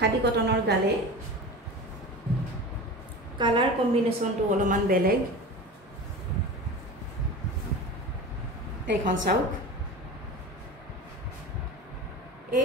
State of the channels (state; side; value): normal; both; correlation 0.32